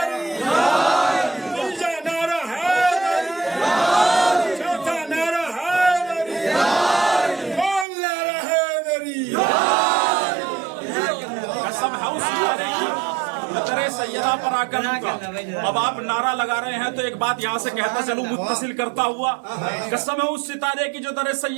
तीजा नारा हैदरी, चौथा नारा हैदरी, कौन नारा हैदरी? कसम है उस सितारे की, सैयदा पर आकर रुका। अब आप नारा लगा रहे हैं तो एक बात यहाँ से कहता चलूं मुत्तसिल करता हुआ, कसम है उस सितारे की जो दर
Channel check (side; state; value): left; drops out; at 7.9 s